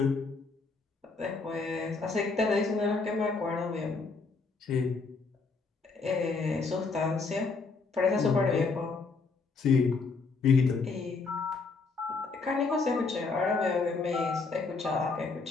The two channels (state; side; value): quieter; right; 4.3 dB